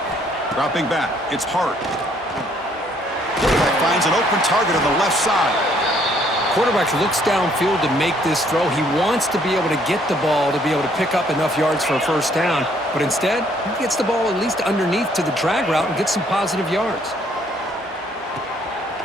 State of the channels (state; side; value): normal; both; correlation 0.65